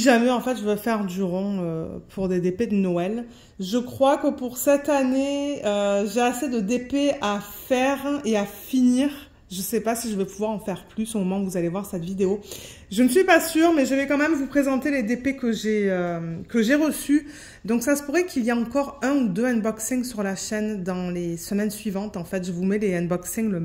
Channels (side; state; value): both; identical; correlation 1.00